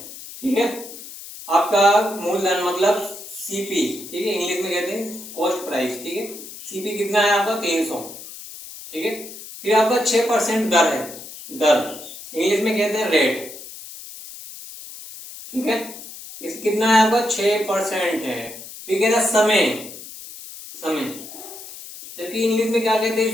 ठीक है। आपका मूलधन मतलब सीपी, ठीक है, इंग्लिश में कहते हैं कॉस्ट प्राइस, ठीक है। सीपी कितना है आपका 300, ठीक है। फिर आपका 6% दर है, दर इंग्लिश में कहते हैं रेट, ठीक है। इस कितना है आपका 6% है। फिर कहना समय, जबकि इंग्लिश में क्या कहते हैं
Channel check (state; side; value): noise; left; hiss, 14 dB below the sound